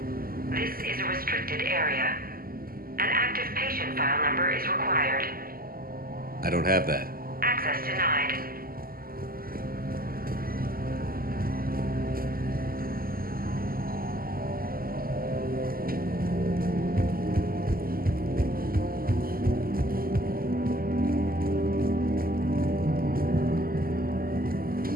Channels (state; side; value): late; left; 0.42 ms